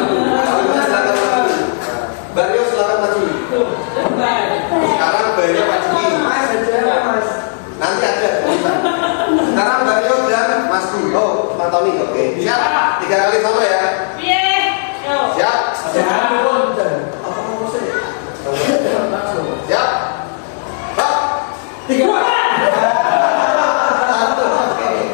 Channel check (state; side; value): silent; right; digital silence